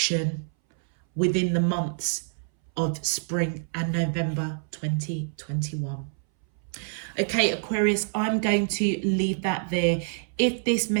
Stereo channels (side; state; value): left; silent; 60 dB below the other